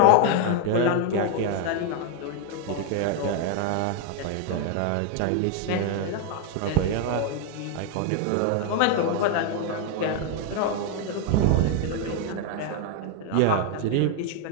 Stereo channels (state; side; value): different; both; correlation 0.01